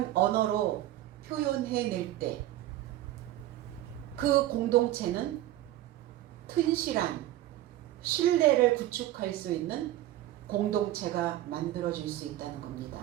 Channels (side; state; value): left; quieter; 14.4 dB